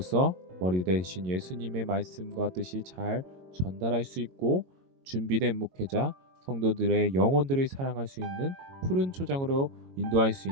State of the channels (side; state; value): left; late; 22 ms